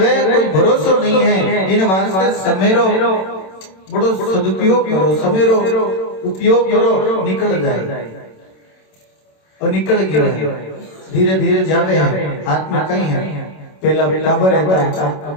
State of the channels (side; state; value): right; late; 27 ms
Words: कोई भरोसा नहीं है। इन वास्ते समेरो बड़ो सदुपयोग करो, समेरो उपयोग करो, निकल जाए और निकल गया है, धीरे धीरे जावे है, हाथ में कहीं है। पहला टाबर रहता,